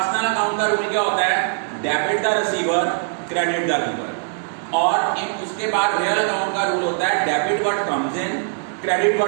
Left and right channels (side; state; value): left; silent; 59 dB below the other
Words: अकाउंट का रूल क्या होता है debit the receiver credit the giver, और उसके बाद रियल अकाउंट का रूल होता है debit what comes in credit